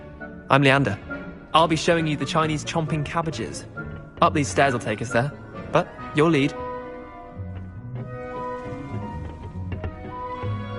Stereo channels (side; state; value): both; identical; correlation 1.00